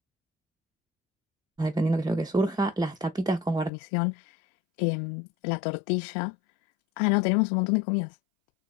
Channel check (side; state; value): right; drops out; at 3.7 s